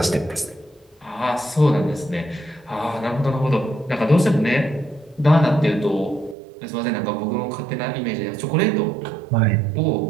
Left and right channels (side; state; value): left; drops out; at 6.4 s